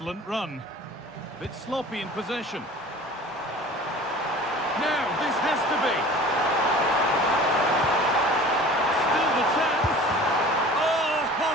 run. Bit sloppy in possession. Now, this has to be. Still the chance. Oh, ho,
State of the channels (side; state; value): both; normal; correlation 0.43